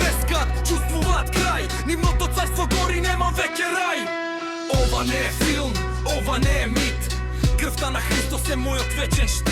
чувствуваат крај. Нивното царство гори, нема веќе рај. Ова не е филм, ова не е мит. Крвта на Христос е мојот вечен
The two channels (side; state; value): both; identical; correlation 1.00